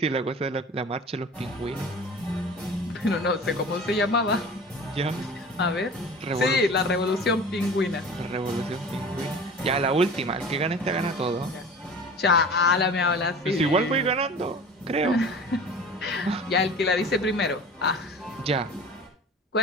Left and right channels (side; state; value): both; normal; correlation 0.39